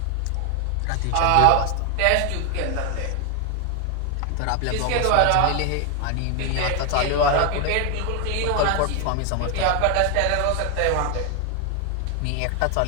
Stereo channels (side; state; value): both; different; correlation 0.00